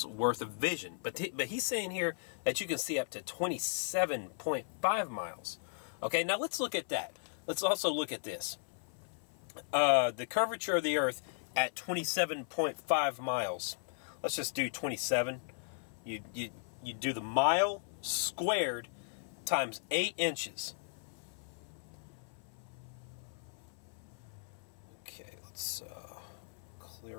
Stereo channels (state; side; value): silent; right; 53 dB below the other